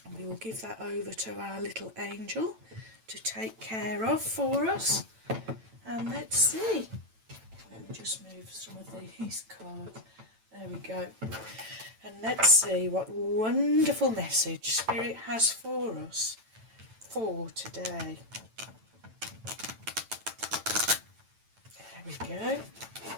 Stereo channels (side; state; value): left; late; 9.0 ms